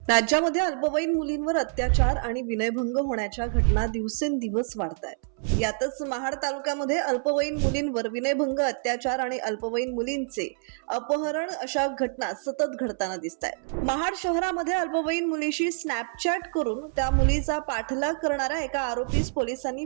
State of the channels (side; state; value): left; silent; 60 dB below the other